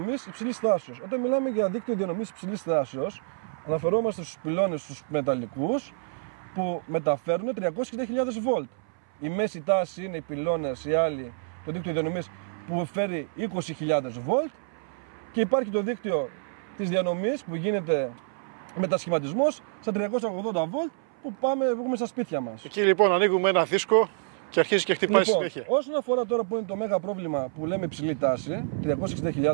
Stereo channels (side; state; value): left; silent; 60 dB below the other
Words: υψηλής τάσεως. Όταν μιλάμε για δίκτυο διανομής υψηλής τάσεως, αναφερόμαστε στους πυλώνες, στους μεταλλικούς, που μεταφέρουν 360.000 βολτ. Η μέση τάση είναι οι πυλώνες, οι άλλοι, το δίκτυο διανομής που φέρει 20.000 βολτ. Και υπάρχει το δίκτυο της διανομής που γίνεται μετασχηματισμός στα 380 βολτ που έχουμε στα σπίτια μας. Εκεί λοιπόν ανοίγουμε ένα δίσκο και αρχίζει και χτυπάει συνέχεια. Όσον αφορά τώρα που είναι το μέγα πρόβλημα που λέμε υψηλή τάση,